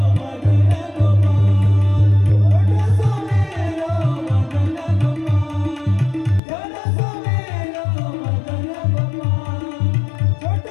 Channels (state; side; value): drops out; right; at 6.4 s